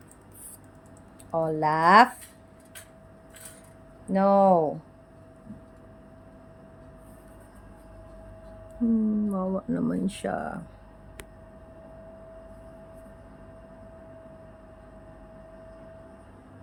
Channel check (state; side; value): identical; both; correlation 1.00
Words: Olaf. No. Mawa naman siya.